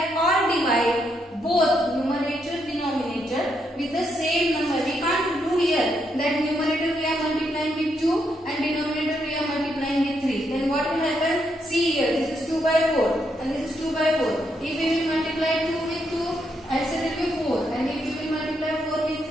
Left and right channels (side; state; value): both; normal; correlation 0.78